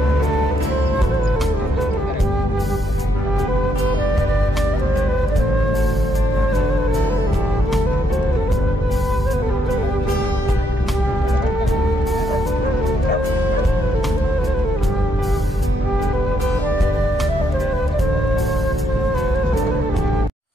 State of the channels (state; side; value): normal; both; correlation 0.76